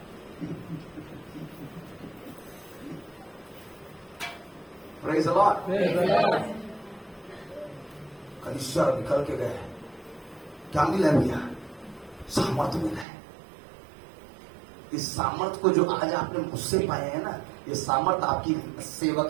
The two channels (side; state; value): left; drops out; at 13.1 s